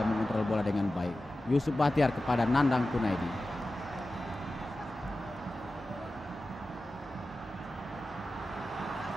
mengontrol bola dengan baik. Yusuf Bahtiar kepada Nandang Kurnaidi.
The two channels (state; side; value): normal; both; correlation 0.94